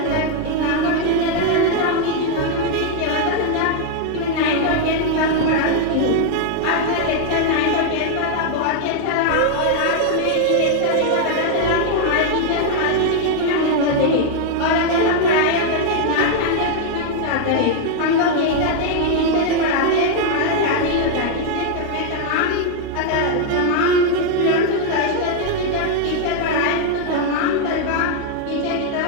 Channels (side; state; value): both; different; correlation 0.00